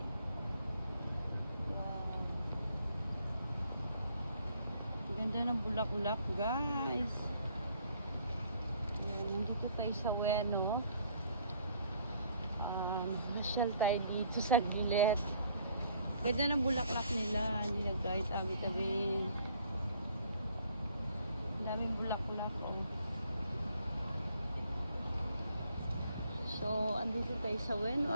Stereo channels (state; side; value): inverted; both; correlation -0.62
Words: Wow. Ang ganda ng bulaklak guys. Nandito tayo sa Ueno. Nasyal tayo dito sa gilid. Ganda ng bulaklak nila. Hindi na kahit tabi-tabi. Daming bulaklak. Oh. So, andito tayo sa Ueno